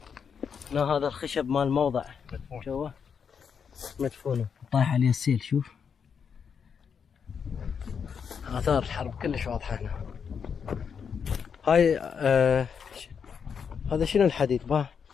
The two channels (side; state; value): right; quieter; 6.7 dB